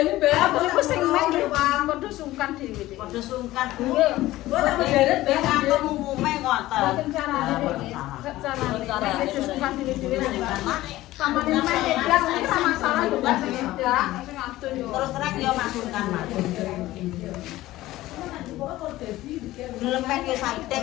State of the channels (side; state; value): right; quieter; 16.5 dB